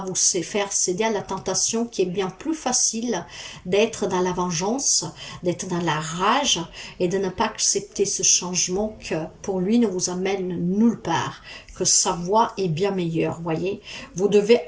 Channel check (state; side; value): identical; both; correlation 1.00